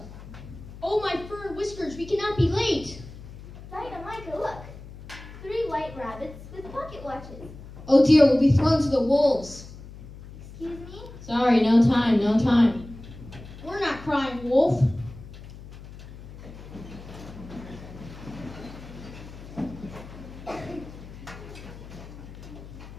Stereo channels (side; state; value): left; noise; hum, 15 dB below the sound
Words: Oh, my fur and whiskers, we cannot be late. Dinah, Micah, look. 3 white rabbits with pocket watches. Oh dear, we'll be thrown to the wolves. Excuse me? Sorry, no time. We're not crying wolf.